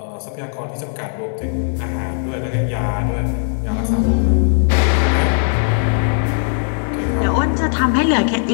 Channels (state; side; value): silent; right; digital silence